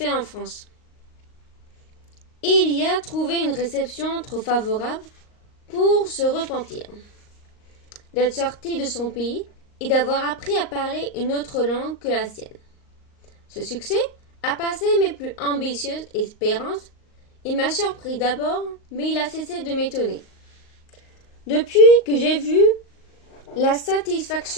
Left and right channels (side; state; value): right; late; 38 ms